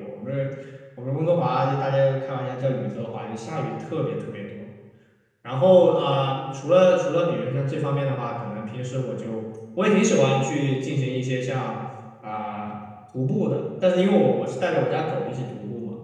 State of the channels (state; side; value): identical; both; correlation 1.00